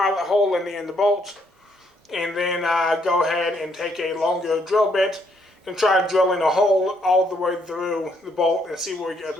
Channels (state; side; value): normal; both; correlation 0.71